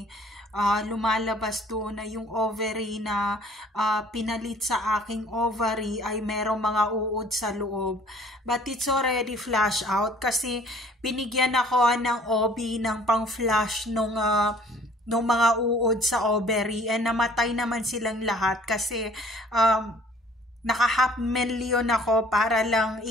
lumalabas doon na yung ovary na pinalit sa aking ovary ay merong mga uod sa loob. But it's already flush out kasi binigyan ako ng OB ng pang-flush nung mga uod sa ovary, and namatay naman silang lahat kasi naka 500,000 ako para lang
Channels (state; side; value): normal; both; correlation 0.55